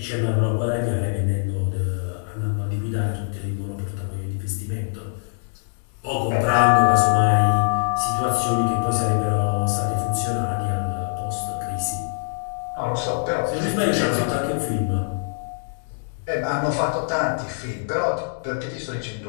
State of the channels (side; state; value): right; silent; digital silence